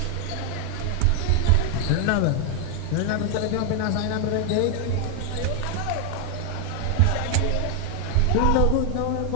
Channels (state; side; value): different; both; correlation 0.00